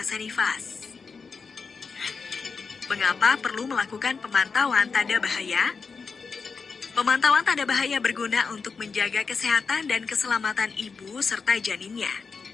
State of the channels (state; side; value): quieter; right; 5.0 dB